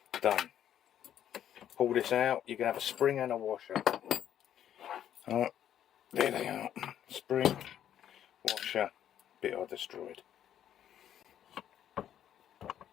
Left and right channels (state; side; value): quieter; right; 10.4 dB